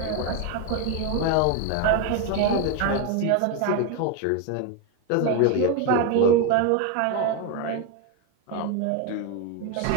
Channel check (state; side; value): different; both; correlation 0.02